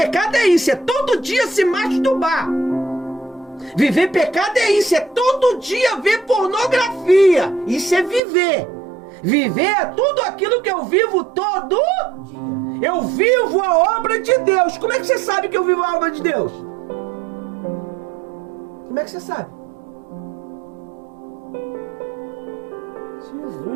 é isso, é todo dia se masturbar. Viver em pecado é isso, é todo dia ver pornografia. Isso é viver. Viver é tudo aquilo que eu vivo todo dia. Eu vivo a obra de Deus. Como é que você sabe que eu vivo a obra de Deus? Como é que você sabe?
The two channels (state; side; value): drops out; left; at 8.2 s